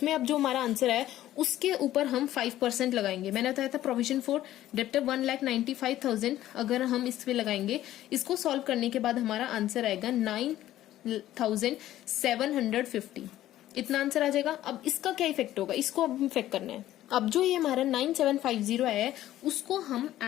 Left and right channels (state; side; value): quieter; right; 13.7 dB